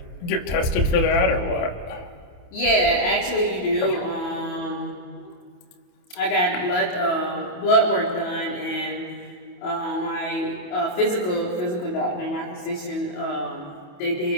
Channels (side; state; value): right; late; 28 ms